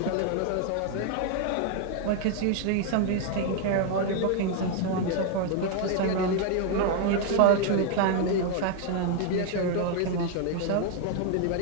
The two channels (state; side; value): different; both; correlation 0.00